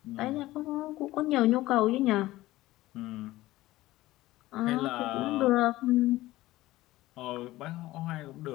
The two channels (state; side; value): quieter; right; 17.1 dB